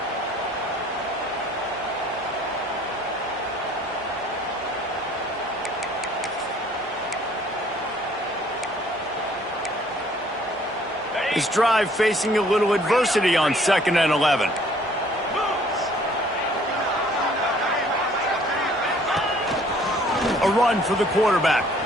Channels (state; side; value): normal; both; correlation 0.58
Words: His drive facing a little adversity on second and 11. A run for the quarterback.